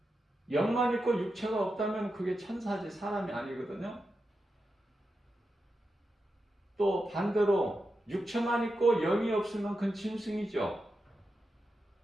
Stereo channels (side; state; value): both; normal; correlation 0.89